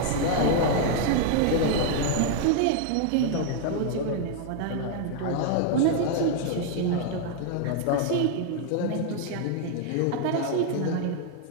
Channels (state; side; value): different; both; correlation 0.00